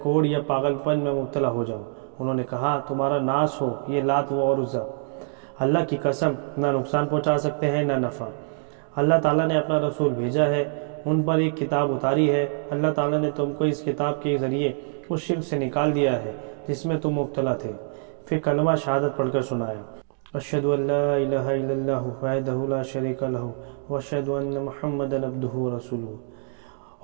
یا پاگل پن میں مبتلا ہو جاؤ۔ انہوں نے کہا، تمہارا ناس ہو، یہ لات و عزا اللہ کی قسم نہ نقصان پہنچا سکتے ہیں نہ نفع۔ اللہ تعالیٰ نے اپنا رسول بھیجا ہے، ان پر ایک کتاب اتاری ہے، اللہ تعالیٰ نے تم کو اس کتاب کے ذریعے اس شرک سے نکال دیا ہے جس میں تم مبتلا تھے۔ پھر کلمہ شہادت پڑھ کر سنایا، اشہد ان لا الہ الا اللہ وحدہ لا شریک لہ واشہد ان محمدا عبدہ ورسولہ۔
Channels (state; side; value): silent; left; digital silence